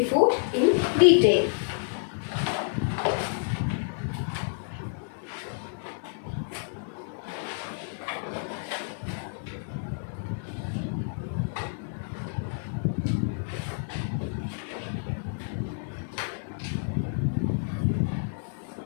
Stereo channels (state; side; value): silent; right; 59 dB below the other